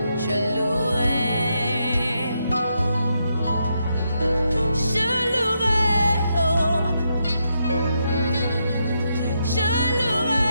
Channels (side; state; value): both; inverted; correlation -0.81